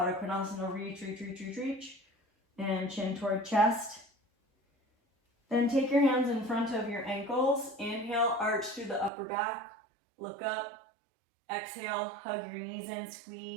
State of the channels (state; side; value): drops out; left; at 9.1 s